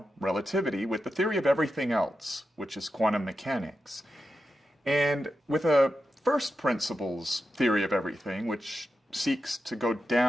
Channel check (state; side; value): normal; both; correlation 0.89